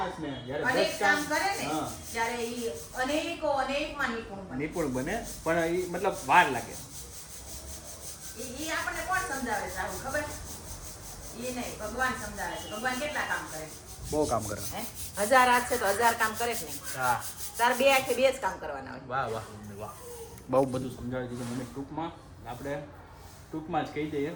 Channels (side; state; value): both; identical; correlation 1.00